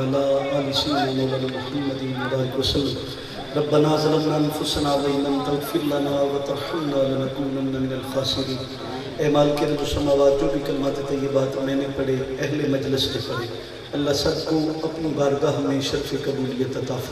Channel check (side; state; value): both; identical; correlation 1.00